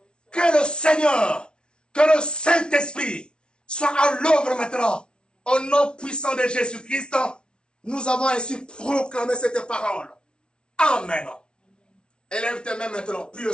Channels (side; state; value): right; late; 0.056 ms